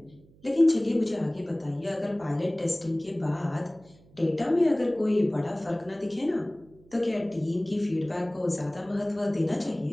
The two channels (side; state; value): right; noise; hum, 27 dB below the sound